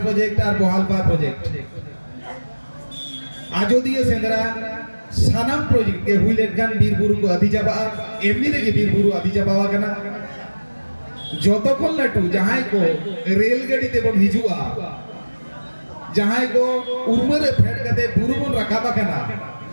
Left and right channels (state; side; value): inverted; both; correlation -1.00